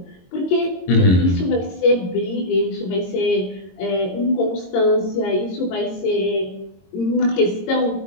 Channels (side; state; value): right; late; 22 ms